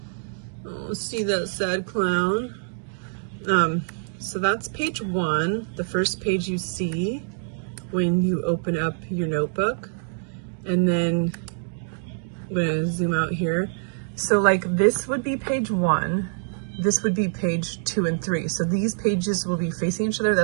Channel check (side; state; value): left; silent; digital silence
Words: Oh, see that sad clown. So that's page 1, the first page you see when you open up your notebook. And then I'm going to zoom out here. So like this would be page 1. This would be page 2 and 3. So these pages will be facing each other.